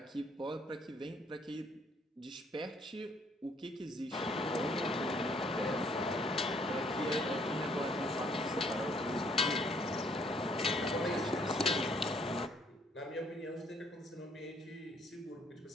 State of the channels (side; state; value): both; normal; correlation 0.65